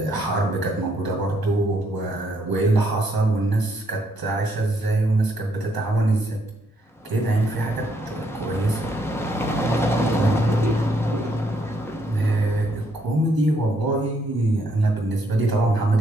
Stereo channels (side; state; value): both; normal; correlation 0.72